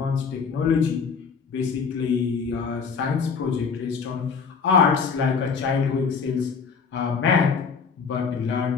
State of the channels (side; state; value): right; quieter; 5.7 dB